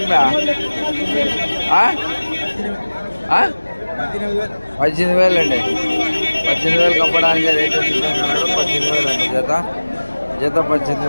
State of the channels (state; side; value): inverted; both; correlation -1.00